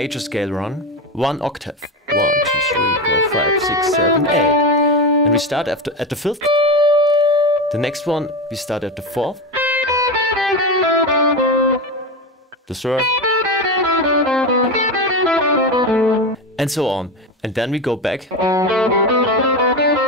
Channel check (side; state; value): both; normal; correlation 0.19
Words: scale run, 1 octave. 1, 2, 3, 4, 5, 6, 7, 8. And we start at the 5th. The next one, we start at the 4th. The 3rd. And so on. And then we go back.